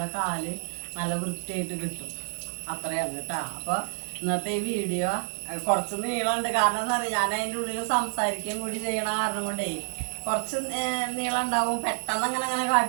കാല് നല്ല വൃത്തിയായിട്ട് കിട്ടും. അത്രയാണ് കേട്ടോ. അപ്പോൾ ഇന്നത്തെ ഈ വീഡിയോ കുറച്ച് നീളമുണ്ട്. കാരണം എന്താ പറയുക, ഞാൻ അതിൻ്റെ ഉള്ളിൽ സംസാരിക്കുകയും കൂടി ചെയ്യണ കാരണം കൊണ്ടേ കുറച്ച് നീളം ഉണ്ടാവും. പെട്ടെന്ന് അങ്ങനെ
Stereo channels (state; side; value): silent; left; digital silence